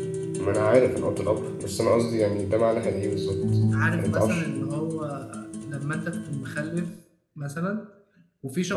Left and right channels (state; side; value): identical; both; correlation 1.00